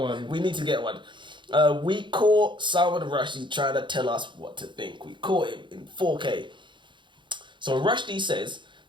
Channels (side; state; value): left; late; 0.23 ms